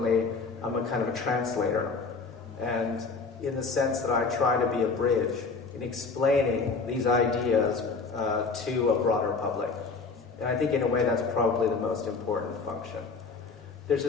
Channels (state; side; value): quieter; right; 4.5 dB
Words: I'm a kind of a translator, and in the sense that I try to be a bridge in explaining these ideas to a broader public. And I think in a way that's probably the most important function. There's